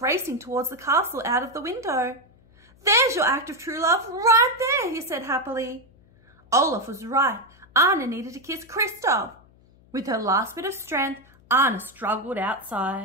racing towards the castle out of the window. "There's your act of true love right there," he said happily. Olaf was right. Anna needed to kiss Kristoff. With her last bit of strength, Anna struggled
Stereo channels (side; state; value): left; noise; hum, 29 dB below the sound